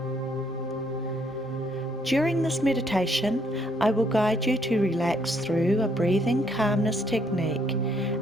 During this meditation, I will guide you to relax through a breathing calmness technique,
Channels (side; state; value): both; normal; correlation 0.69